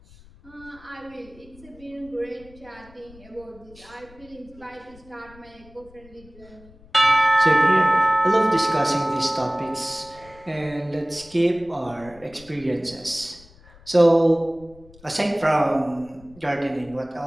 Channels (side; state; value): left; noise; rumble, 24 dB below the sound